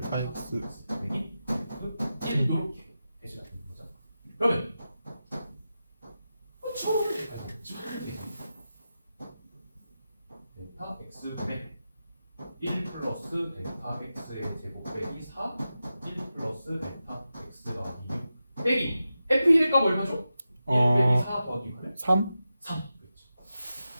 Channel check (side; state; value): both; inverted; correlation -0.92